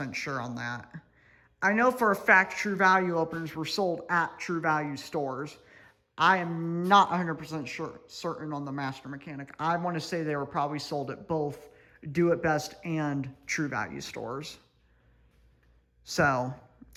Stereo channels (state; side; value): identical; both; correlation 1.00